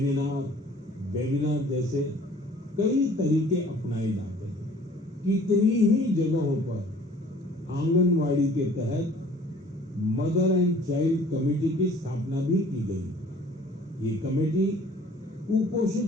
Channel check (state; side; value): normal; both; correlation 0.52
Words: वेबिनार जैसे कई तरीके अपनाए जाते हैं। कितनी ही जगहों पर आंगनवाड़ी के तहत मदर एंड चाइल्ड कमेटी की स्थापना भी की गई। ये कमेटी